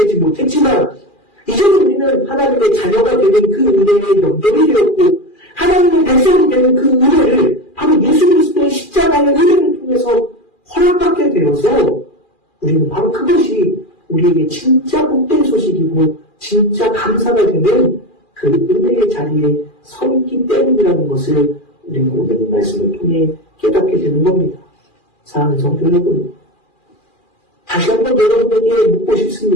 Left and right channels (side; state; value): right; late; 2.4 ms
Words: 못했지만 이제는 우리는 하나님의 자녀가 되는 그 은혜에 연결이 되었고 하나님의 백성이 되는 그 은혜를 바로 예수 그리스도의 십자가의 은혜를 통해서 허락받게 되어서 우리는 바로 그것이 우리에게 진짜 복된 소식이고 진짜 감사가 되는 그 은혜의 자리에 서 있기 때문이라는 것을 우리는 오늘 이 말씀을 통해 깨닫게 되는 겁니다. 사랑하는 성도 여러분, 다시 한번 여러분에게 묻고